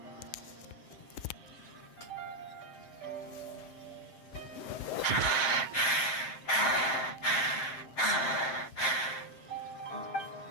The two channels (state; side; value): late; right; 7.6 ms